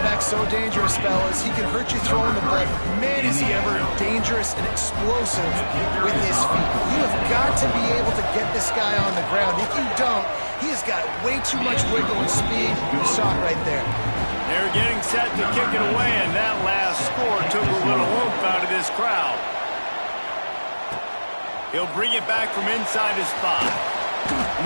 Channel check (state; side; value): inverted; both; correlation -1.00